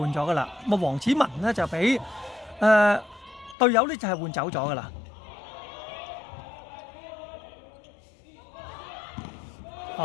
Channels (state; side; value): drops out; right; at 3.6 s